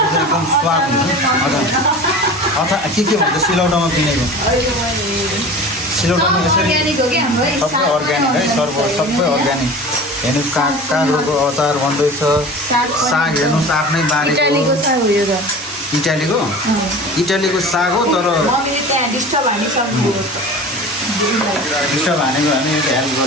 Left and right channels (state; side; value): normal; both; correlation 0.37